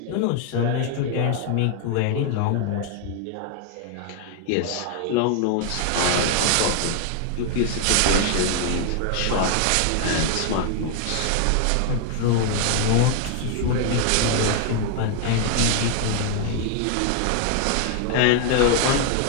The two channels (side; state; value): both; different; correlation 0.00